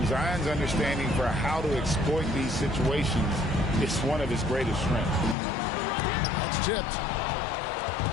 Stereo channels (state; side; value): drops out; right; at 5.4 s